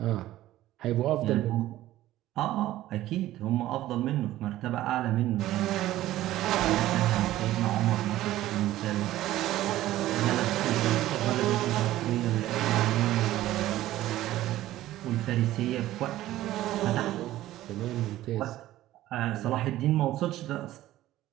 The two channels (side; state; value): left; quieter; 14.8 dB